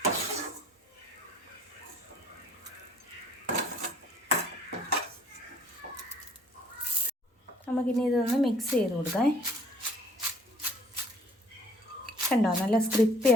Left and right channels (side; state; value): both; normal; correlation 0.57